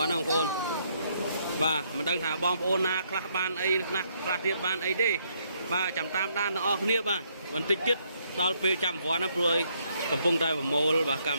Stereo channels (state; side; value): inverted; both; correlation -0.71